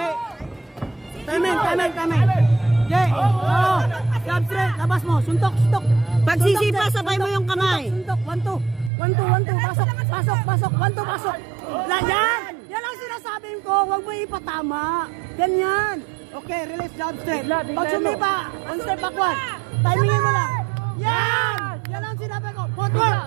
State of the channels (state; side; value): drops out; left; at 8.9 s